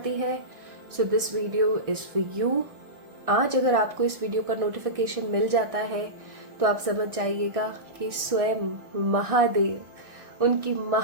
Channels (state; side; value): late; left; 1.6 ms